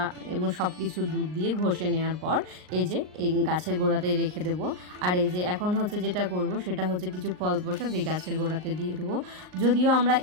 এবং সব কিছু দুধ দিয়ে ঘষে নেওয়ার পর এই যে এই গাছের গোড়াতে রেখে দেবো। আর এই যে এখন হচ্ছে যেটা করব সেটা হচ্ছে কিছু ফল প্রসাদ এই গাছের গোড়াতে দিয়ে দেবো। যদিও আমরা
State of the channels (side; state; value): left; late; 39 ms